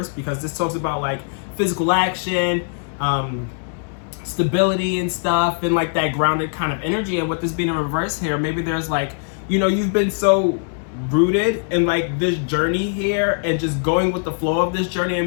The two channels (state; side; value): silent; right; digital silence